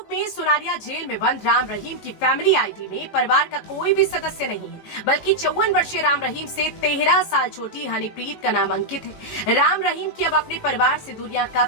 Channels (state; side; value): late; right; 19 ms